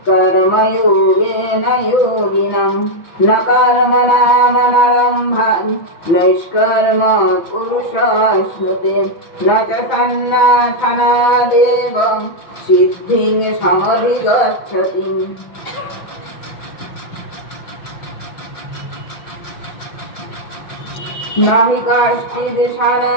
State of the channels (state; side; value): late; right; 6.0 ms